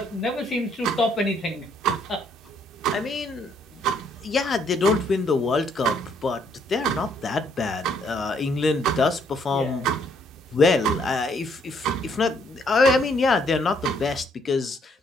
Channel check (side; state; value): both; normal; correlation 0.68